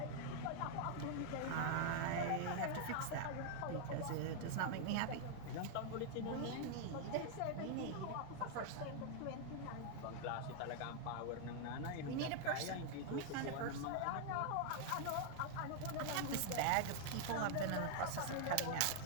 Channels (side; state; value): both; different; correlation 0.00